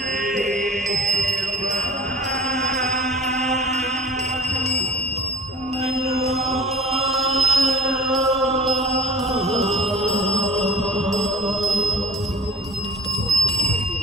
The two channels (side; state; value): both; normal; correlation 0.48